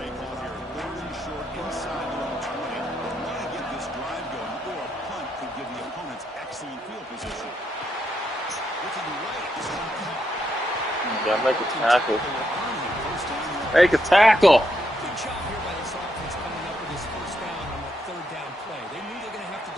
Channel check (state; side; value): normal; both; correlation 0.79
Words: call here. Third and short inside their own 20. They want to get this drive going, or a punt could give the opponents excellent field position. Looking right, this one caught. Yeah, make a tackle. First down. Make a tackle. Good job here by this offense coming up with this first down on that third down play. They knew they were going to have to